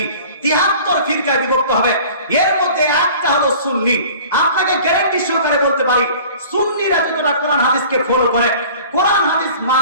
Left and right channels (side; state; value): both; inverted; correlation -0.45